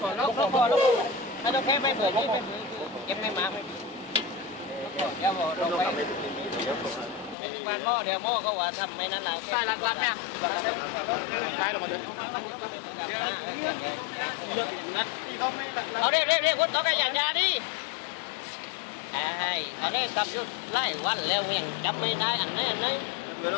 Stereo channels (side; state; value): right; drops out; at 7.4 s